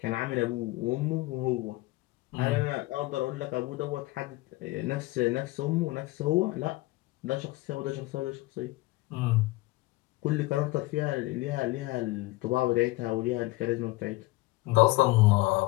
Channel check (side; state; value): right; quieter; 20.5 dB